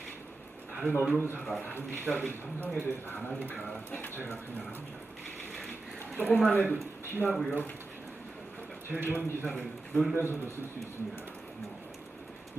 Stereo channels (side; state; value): left; quieter; 3.1 dB